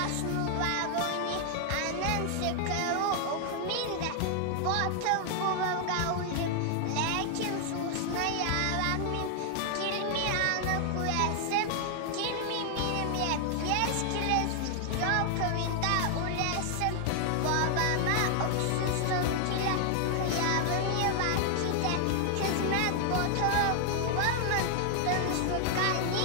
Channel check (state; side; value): different; both; correlation 0.00